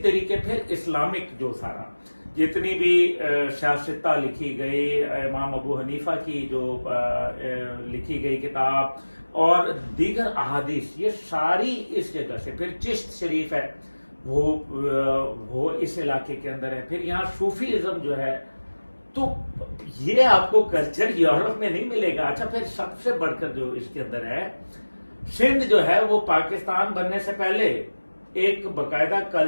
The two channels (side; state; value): both; inverted; correlation -1.00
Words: तरीके फिर इस्लामिक जो सारा जितनी भी शास्त्रता लिखी गई, इमाम अबू हनीफा की जो लिखी गई किताब और दीगर अहादीस, ये सारी इस जगह से। फिर चिश्त शरीफ है वो इस इलाके के अंदर है। फिर यहाँ सूफीइज्म जो है, तो ये आपको कल्चर यूरोप में नहीं मिलेगा। अच्छा, फिर सबसे बढ़कर जो इसके अंदर है, सिंध जो है वो पाकिस्तान बनने से पहले एक बकायदा